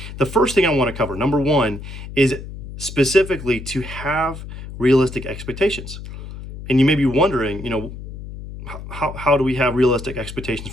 the first thing I want to cover, number one, is specifically to have realistic expectations. And you may be wondering, how do we have realistic expectations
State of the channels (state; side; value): noise; left; hum, 11 dB below the sound